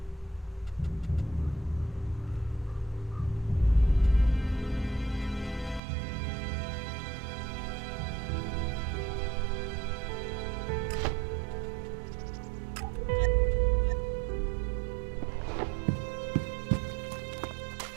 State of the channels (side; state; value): left; drops out; at 5.8 s